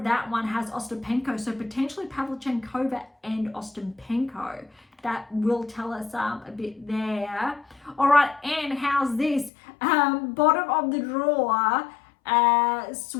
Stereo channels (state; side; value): drops out; right; at 9.5 s